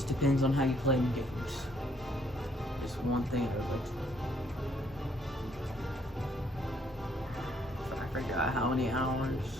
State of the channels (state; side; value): normal; both; correlation 0.68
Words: depends on how you play in games. Just one thing I would like to I forgot how many hours,